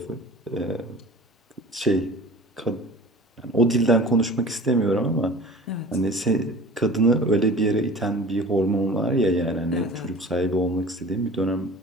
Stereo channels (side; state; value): both; normal; correlation 0.41